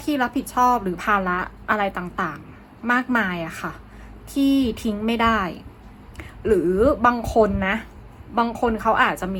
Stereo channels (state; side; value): identical; both; correlation 1.00